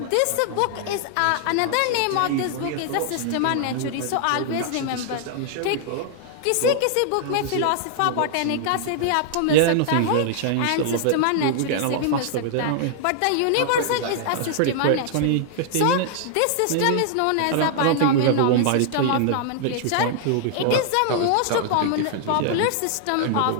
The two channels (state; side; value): different; both; correlation -0.01